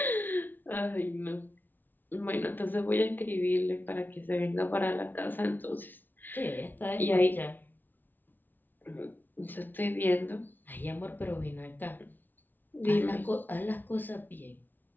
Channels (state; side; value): late; right; 0.089 ms